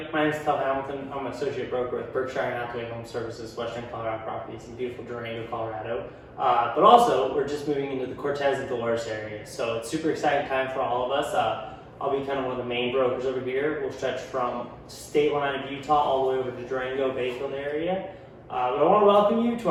my name is Stetson Hamilton. I'm an associate broker with Berkshire and Hathaway HomeServices, Western Colorado properties in beautiful Durango, Colorado. But also, we're just moving into the Cortez and Dolores area, so it's super exciting time for all of us. I'll be kind of one of the main brokers over here. We'll stretch from state line of Utah all the way over to Durango, Bayfield area. But I want to welcome you to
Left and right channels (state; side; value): identical; both; correlation 1.00